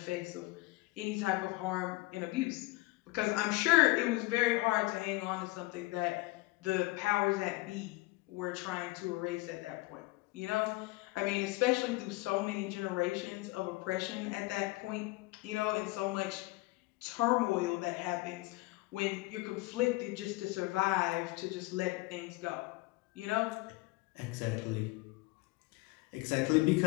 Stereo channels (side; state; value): right; quieter; 21.4 dB